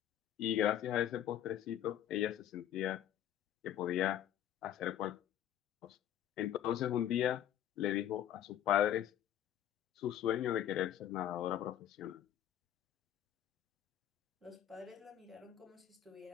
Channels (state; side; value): quieter; right; 11.2 dB